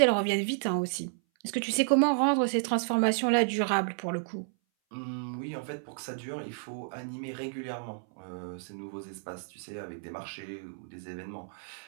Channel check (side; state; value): left; silent; 57 dB below the other